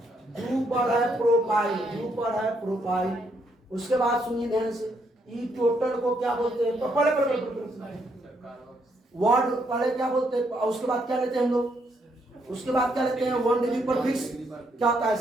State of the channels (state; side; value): normal; both; correlation 0.74